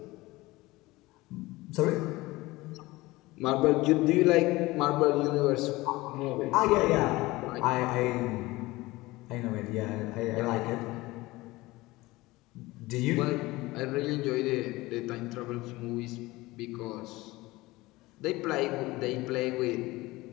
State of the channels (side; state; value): right; quieter; 20.1 dB